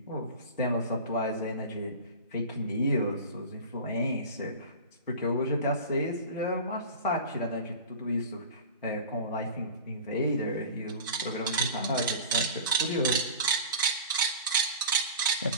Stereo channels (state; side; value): inverted; both; correlation -0.34